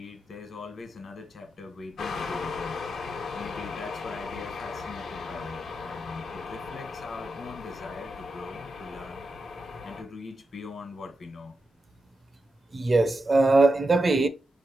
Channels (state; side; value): normal; both; correlation 0.88